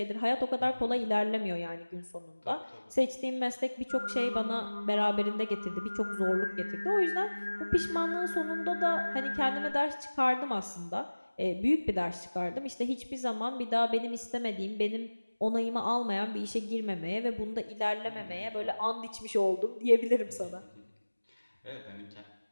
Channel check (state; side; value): inverted; both; correlation -1.00